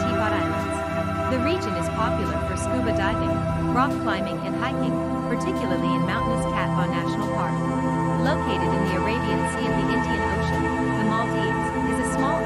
Islands. The region is popular for scuba diving, rock climbing, and hiking, particularly in mountainous Cat Ba National Park. Located in the Arabian Sea of the Indian Ocean, the Maldives is a small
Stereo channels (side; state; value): both; identical; correlation 1.00